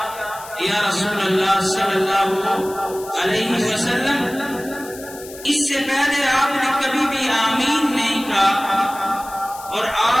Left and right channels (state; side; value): noise; left; hiss, 16 dB below the sound